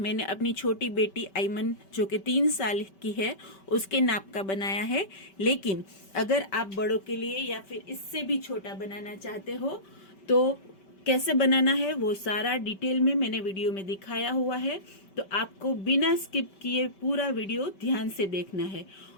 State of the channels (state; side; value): late; right; 5.2 ms